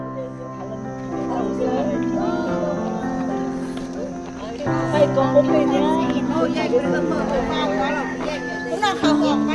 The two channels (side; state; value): both; identical; correlation 1.00